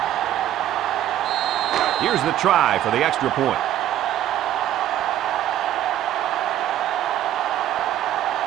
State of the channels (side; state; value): left; quieter; 12.1 dB